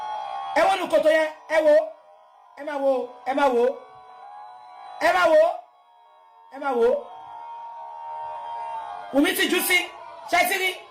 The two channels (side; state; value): both; identical; correlation 1.00